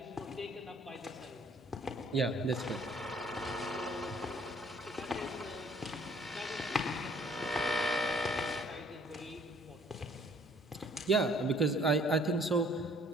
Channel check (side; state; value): both; normal; correlation 0.58